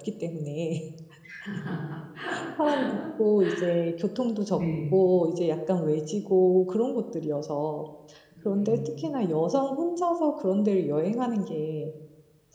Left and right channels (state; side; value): identical; both; correlation 1.00